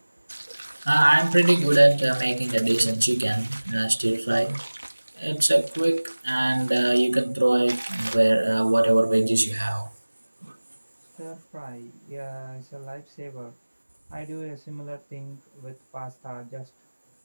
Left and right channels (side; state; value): both; inverted; correlation -1.00